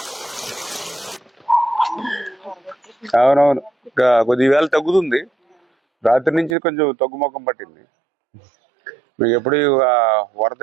అవునవును, కొద్ది వేళ తగ్గుతుంది. రాత్రి నుంచి కొంచెం తగ్గుముఖం పట్టింది. మీకు ఎప్పుడు వరద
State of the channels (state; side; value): drops out; left; at 6.6 s